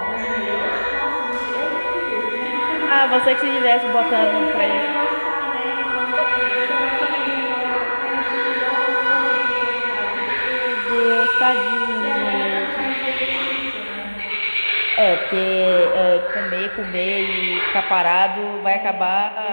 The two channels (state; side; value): inverted; both; correlation -1.00